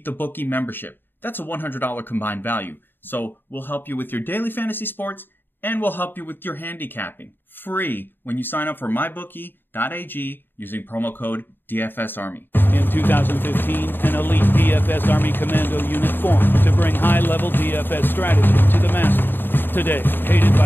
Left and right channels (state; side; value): late; right; 0.096 ms